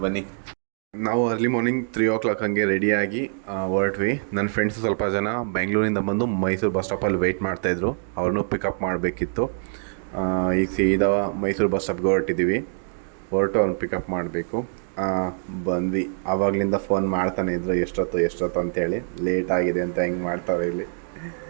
ಬನ್ನಿ. ನಾವು ಅರ್ಲಿ ಮಾರ್ನಿಂಗ್ 3 o'clock ಹಂಗೆ ರೆಡಿಯಾಗಿ ಹೊರಟ್ವಿ. ನನ್ನ ಫ್ರೆಂಡ್ಸು ಸ್ವಲ್ಪ ಜನ ಬೆಂಗಳೂರಿಂದ ಬಂದು ಮೈಸೂರು ಬಸ್ ಸ್ಟಾಪಲ್ಲಿ ವೆಯ್ಟ್ ಮಾಡ್ತಾಯಿದ್ರು. ಅವ್ರನ್ನೂ ಪಿಕಪ್ ಮಾಡಬೇಕಿತ್ತು. ಈಗ ಸೀದಾ ಮೈಸೂರು ಬಸ್ ಸ್ಟಾಪ್ಗೆ ಹೊರಟಿದ್ದೀವಿ. ಅವ್ರನ್ನ ಪಿಕಪ್ ಮಾಡಬೇಕು. ಬಂದ್ವಿ. ಆವಾಗಲಿಂದ ಫೋನ್ ಮಾಡ್ತಾನೆ ಇದ್ರು, ಎಷ್ಟೊತ್ತು ಅಂತೇಳಿ. ಲೇಟ್ ಆಗಿದೆ ಅಂತ ಹೆಂಗೆ ಮಾಡ್ತಾರೆ ಇಲ್ಲಿ.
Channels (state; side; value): silent; left; digital silence